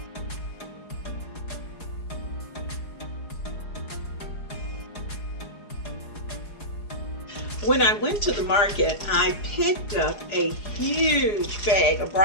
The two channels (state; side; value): late; right; 4.8 ms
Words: When I went to the market, I picked up a huge bag of